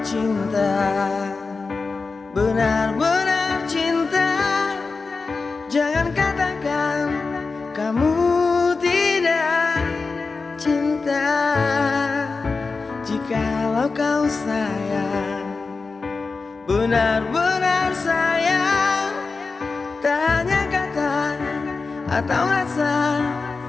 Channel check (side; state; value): right; quieter; 4.2 dB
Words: cinta, benar-benar cinta, jangan katakan kamu tidak cinta. Jikalau kau sayang, benar-benar sayang, tak hanya kata atau rasa,